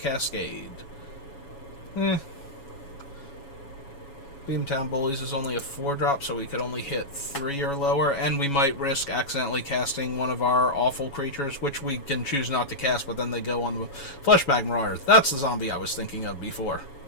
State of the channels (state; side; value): late; right; 7.1 ms